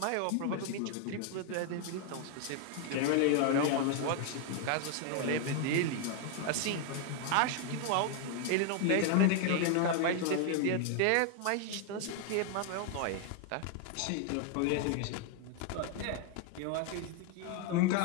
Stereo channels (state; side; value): different; both; correlation 0.00